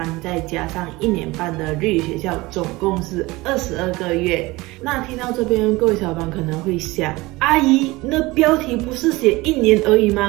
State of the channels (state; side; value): quieter; left; 21.3 dB